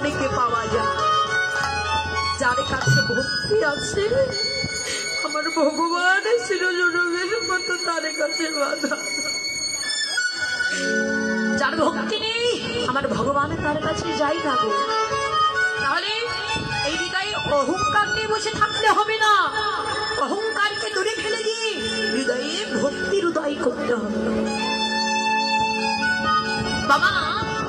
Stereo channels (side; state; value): both; identical; correlation 1.00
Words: পাওয়া যায়। যার কাছে ভক্তি আছে আমার ভগবান শিরোজনমের মতো তার কাছে বাধা, যার ভক্তি নেই আমার ভগবান তার কাছে যাই না গো। তাহলে এই হৃদয়ে অহংকার নিয়ে বসে থাকলে হবে না, অহংকারকে দূরে ফেলে দিয়ে হৃদয়ে ভক্তির উদয় করতে হবে। বাবা